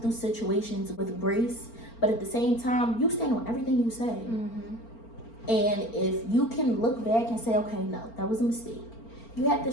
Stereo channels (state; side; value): late; right; 4.4 ms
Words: through situations with grace, but at the same time you stand on everything you say. And if you can look back and say, okay, no, that was a mistake, you have the